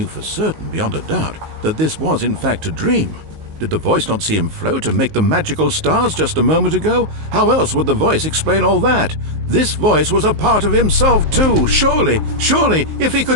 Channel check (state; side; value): late; left; 19 ms